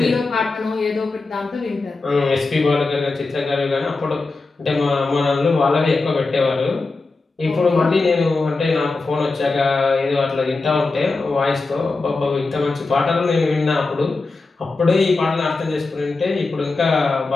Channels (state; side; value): quieter; right; 3.7 dB